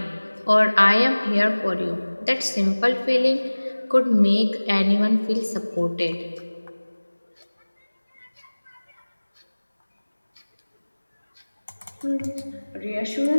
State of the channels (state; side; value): inverted; both; correlation -1.00